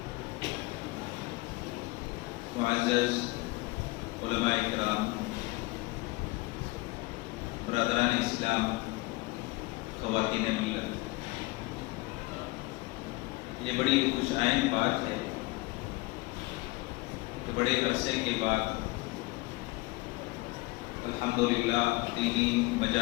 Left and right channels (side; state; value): right; quieter; 22.3 dB